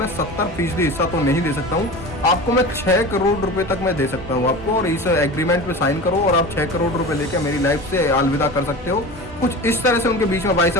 70% हिस्सा तो नहीं दे सकता हूँ, आपको मैं 6 करोड़ रुपए तक मैं दे सकता हूँ आपको, और इस एग्रीमेंट पे साइन करो और आप 6 करोड़ रुपए लेकर मेरी लाइफ से अलविदा कर सकते हो। कुछ इस तरह से उनके बीच में भाई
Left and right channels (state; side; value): normal; both; correlation 0.32